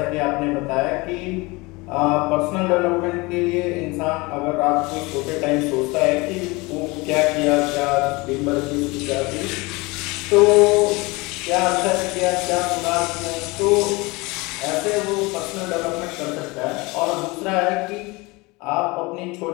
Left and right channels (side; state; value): right; quieter; 24.4 dB